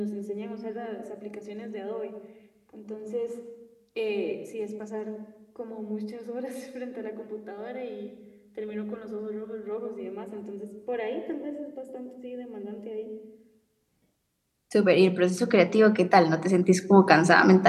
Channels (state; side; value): identical; both; correlation 1.00